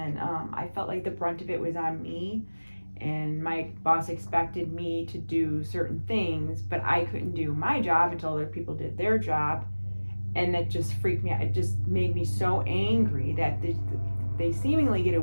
I felt like the brunt of it was on me, and my boss expected me to do certain things, but I couldn't do my job until other people did their job, and that just freaked me out. It just made me so angry that they seemingly get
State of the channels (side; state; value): both; inverted; correlation -1.00